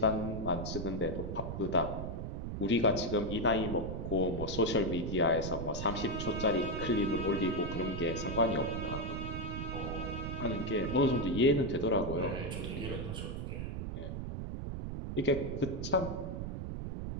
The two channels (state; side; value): noise; right; rumble, 5 dB below the sound